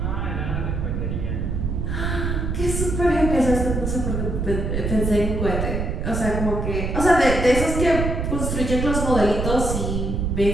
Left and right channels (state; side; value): noise; right; rumble, 1 dB below the sound